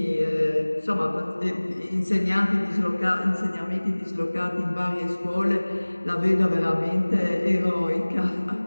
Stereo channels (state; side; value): inverted; both; correlation -1.00